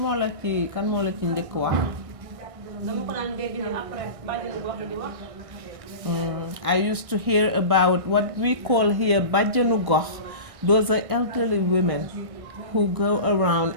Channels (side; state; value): left; late; 1.6 ms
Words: moo la ci njëkk wax? I used to hear about what we call here bajjanu gox. Those are elderly women who go around